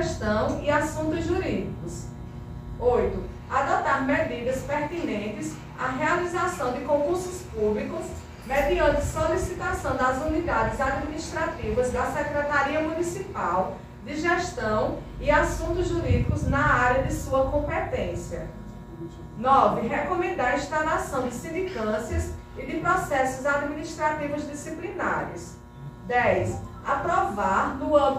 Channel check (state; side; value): identical; both; correlation 1.00